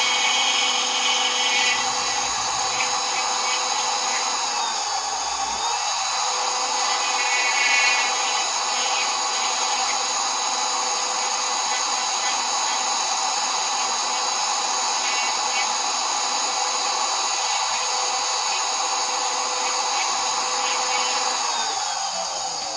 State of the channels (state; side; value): identical; both; correlation 1.00